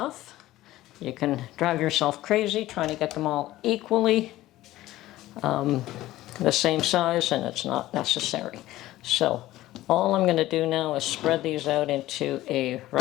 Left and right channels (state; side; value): quieter; right; 15.9 dB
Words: You can drive yourself crazy trying to get them all equally. the same size, and it's not necessary. So all I'm going to do now is spread these out into a